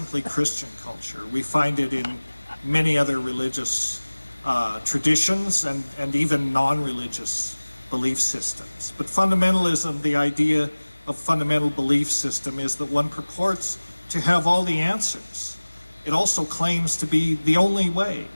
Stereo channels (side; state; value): both; inverted; correlation -1.00